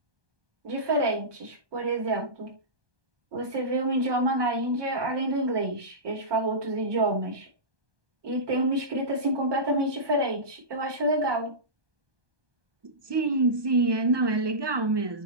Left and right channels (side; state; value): left; late; 1.2 ms